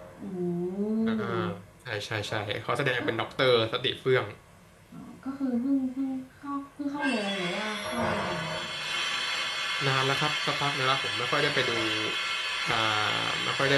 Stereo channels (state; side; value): identical; both; correlation 1.00